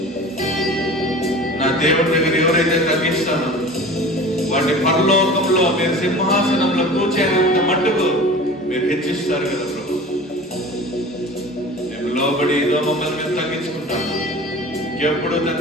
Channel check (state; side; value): normal; both; correlation 0.39